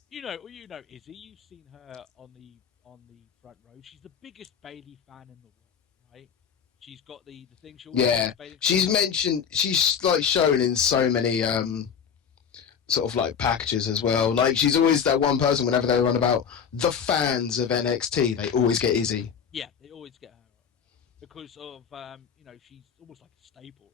You know Izzy. You've seen her on the front row. She's the biggest Bayley fan in the world, right? She's got the thing. She's mentioned. She's like shown in so many sort of like packages as well. Like she's always that one person. Whenever they run about the fans of NXT, they always get Izzy. Yeah, they always get her on because of she's almost like a staple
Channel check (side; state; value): right; quieter; 7.2 dB